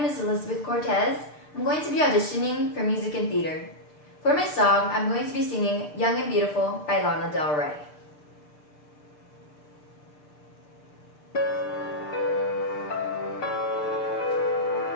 is Elizabeth Cortez. I'm going to be auditioning for music and theater. For my song, I'm going to be singing Young and Beautiful by Lana Del Rey.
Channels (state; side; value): late; right; 6.7 ms